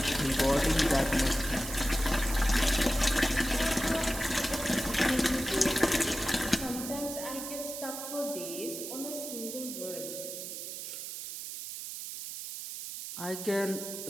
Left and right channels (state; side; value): noise; right; hiss, 8 dB below the sound